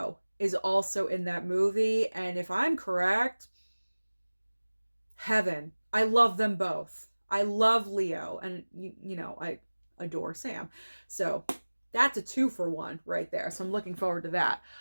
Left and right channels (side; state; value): both; inverted; correlation -1.00